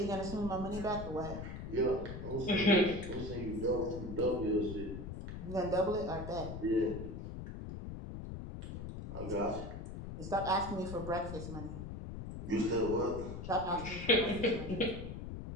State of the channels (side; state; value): left; noise; rumble, 7 dB below the sound